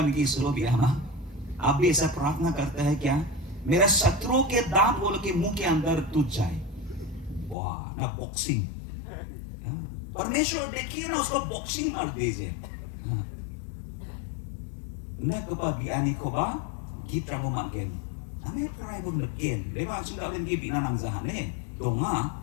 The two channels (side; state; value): right; drops out; at 7.6 s